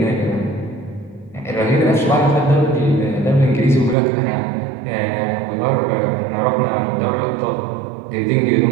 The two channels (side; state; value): left; drops out; at 4.0 s